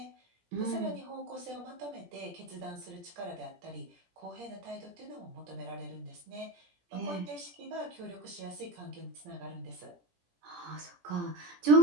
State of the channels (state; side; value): late; left; 17 ms